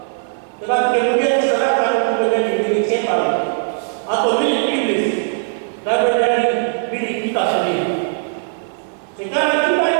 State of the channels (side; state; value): left; silent; digital silence